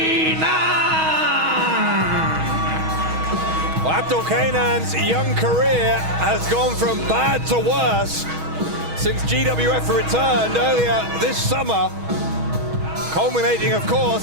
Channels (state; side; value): late; left; 6.3 ms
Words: Well, Abdul Kanan's young career has gone from bad to worse since GWF returned earlier this summer, culminating, of